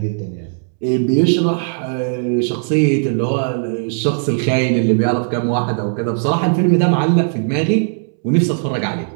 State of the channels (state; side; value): silent; left; 68 dB below the other